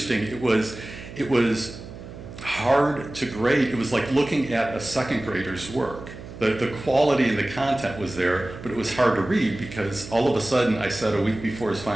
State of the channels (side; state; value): right; noise; hum, 14 dB below the sound